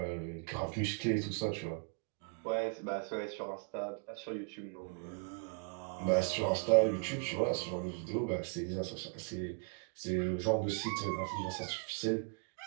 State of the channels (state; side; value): quieter; left; 39.4 dB